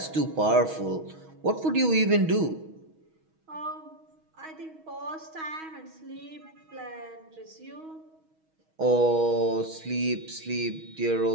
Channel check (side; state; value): left; late; 6.3 ms